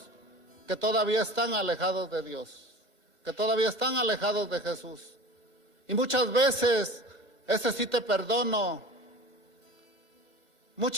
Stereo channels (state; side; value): late; left; 2.0 ms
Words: que todavía están alejados de Dios, que todavía están alejados de Jesús. Y muchas veces, ese sí te perdono,